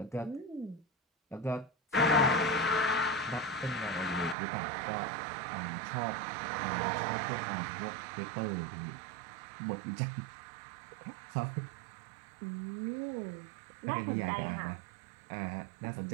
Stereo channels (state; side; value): drops out; left; at 4.4 s